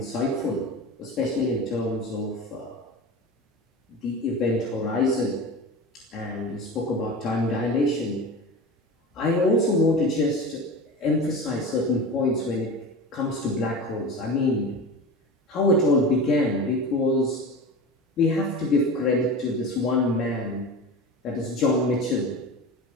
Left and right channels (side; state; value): both; normal; correlation 0.30